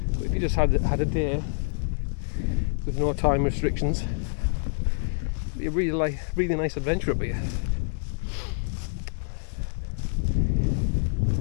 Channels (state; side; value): silent; right; digital silence